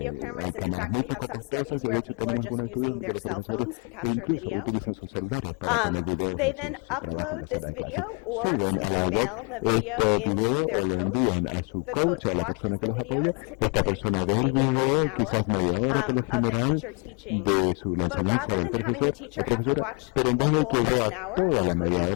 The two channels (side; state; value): right; quieter; 34.6 dB